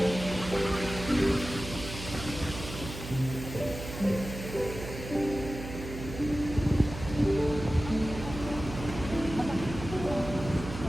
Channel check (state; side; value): noise; right; hum, 10 dB below the sound